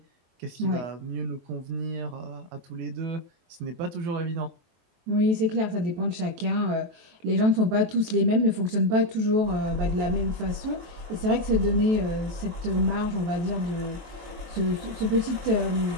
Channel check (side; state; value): left; late; 23 ms